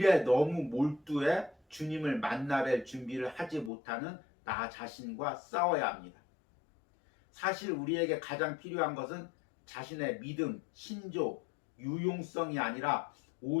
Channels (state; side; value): drops out; right; at 3.7 s